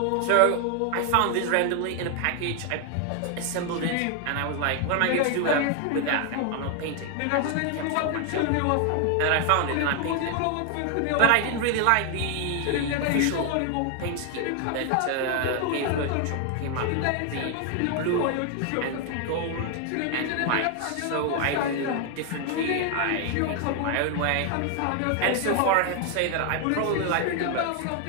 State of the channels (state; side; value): different; both; correlation 0.00